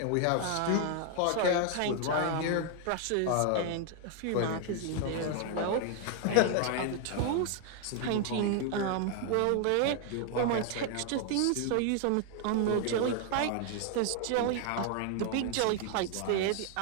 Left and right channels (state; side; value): different; both; correlation 0.00